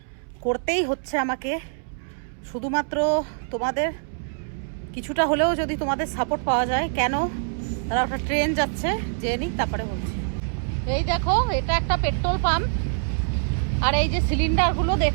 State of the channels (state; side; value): silent; left; 62 dB below the other